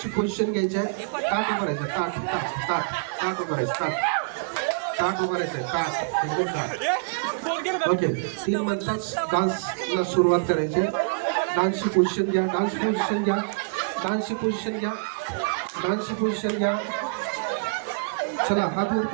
पोझिशन घ्यायची. ताट उभं राहायचं, ताट ताट ताट ताट उभं राहायचं, ताट ताट उभं राहायचं, ताट एकदम ताट. ओके, 3 म्हणतात डान्सला सुरुवात करायची. डान्सची पोझिशन घ्या, डान्स पोझिशन घ्या, डान्सची पोझिशन घ्या, डान्सची पोझिशन घ्या. चला हात वर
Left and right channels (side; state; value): left; quieter; 36.5 dB